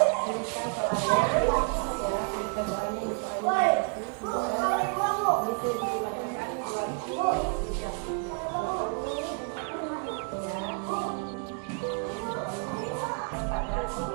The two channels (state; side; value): quieter; left; 39.9 dB